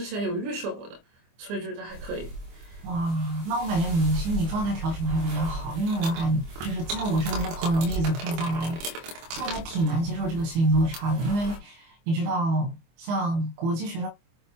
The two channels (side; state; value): left; late; 24 ms